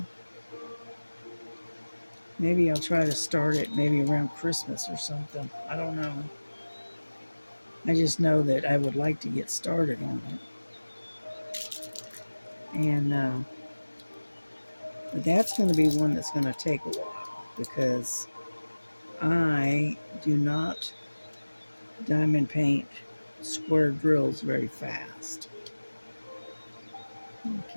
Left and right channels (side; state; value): both; inverted; correlation -1.00